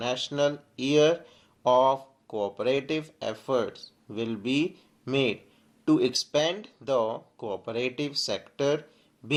Year of Cooperative efforts will be made to expand the cooperative sector,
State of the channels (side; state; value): both; identical; correlation 1.00